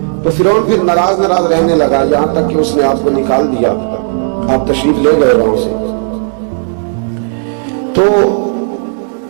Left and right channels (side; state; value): left; silent; digital silence